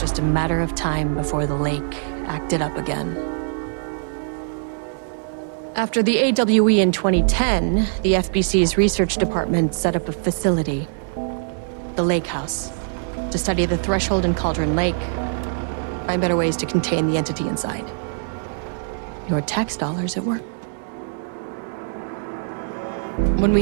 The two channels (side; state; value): left; silent; digital silence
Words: just a matter of time before the lake acted up again. After the AWE in 2010, the FBC's research department set up a facility, the Lake House, to study the threshold in Cauldron Lake, find better ways to contain the entity inside. Your tax dollars at work. When we